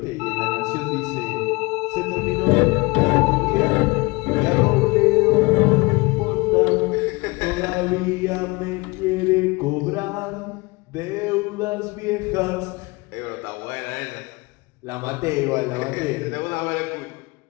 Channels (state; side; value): quieter; right; 25.2 dB